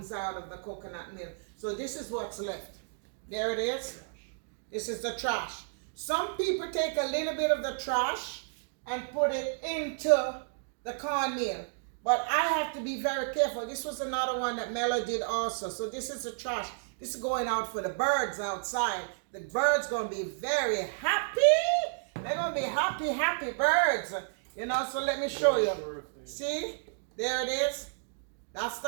out of the coconut milk. So this is what's left. There it is. This is the trash. Some people take a little bit of the trash and put it into the cornmeal. But I have to be very careful. This was another one that Mello did also. So this is the trash. This is going out for the birds outside. The birds going to be very happy. They're going to be happy, happy birds. You know, so let me show you. See? There it is. That's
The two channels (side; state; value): left; silent; digital silence